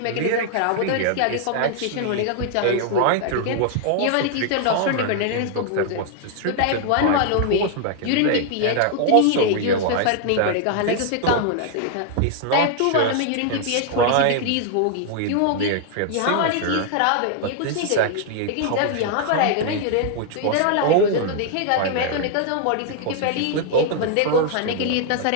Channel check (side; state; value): both; different; correlation 0.00